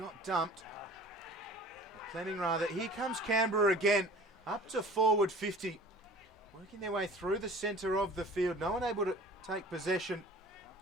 dumped. Or Fleming rather. Here comes Canberra again. Up to forward 50. Working their way through the centre of the field. No one able to take possession.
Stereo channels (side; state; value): both; normal; correlation 0.45